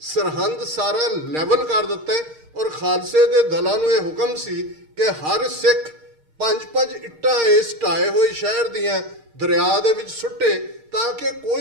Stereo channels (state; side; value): late; left; 6.5 ms